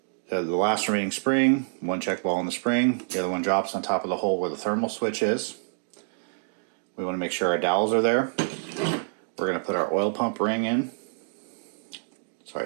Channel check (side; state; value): left; silent; digital silence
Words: the last remaining spring, 1 check ball in the spring, the other one drops on top of the hole where the thermal switch is. We want to make sure our dowels are there. We're going to put our oil pump ring in. Sorry,